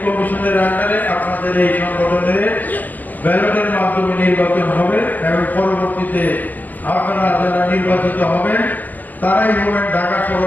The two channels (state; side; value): late; right; 0.083 ms